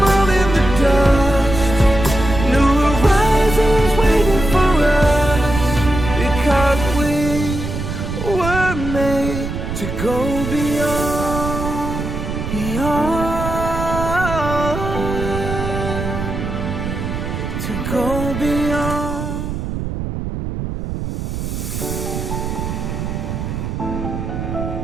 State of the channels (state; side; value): noise; right; rumble, 5 dB below the sound